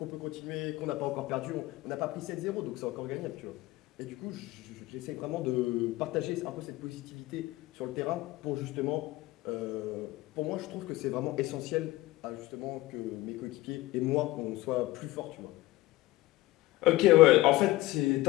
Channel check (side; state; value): right; quieter; 17.8 dB